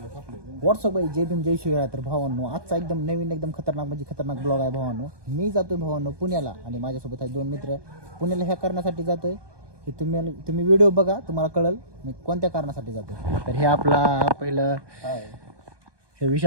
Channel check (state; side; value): late; left; 1.2 ms